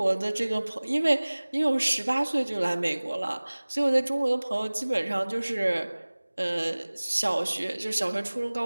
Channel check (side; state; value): both; inverted; correlation -1.00